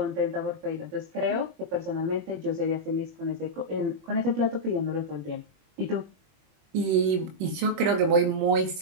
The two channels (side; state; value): left; late; 21 ms